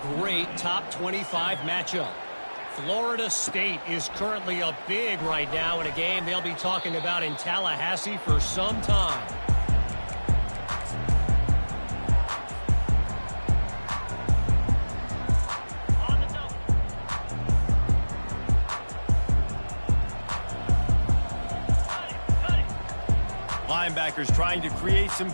great top 25 matchup. Florida State is currently up big right now in a game they'll be talking about in Tallahassee for some time. Linebackers trying to create some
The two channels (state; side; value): inverted; both; correlation -1.00